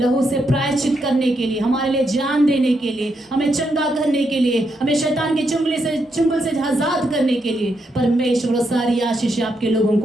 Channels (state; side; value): normal; both; correlation 0.80